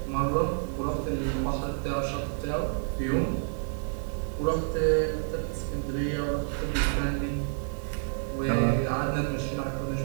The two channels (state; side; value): silent; left; digital silence